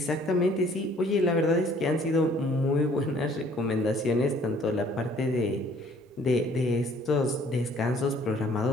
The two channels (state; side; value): normal; both; correlation 0.58